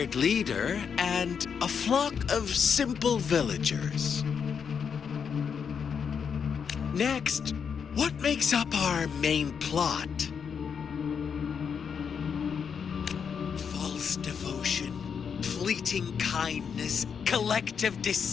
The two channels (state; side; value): quieter; right; 6.8 dB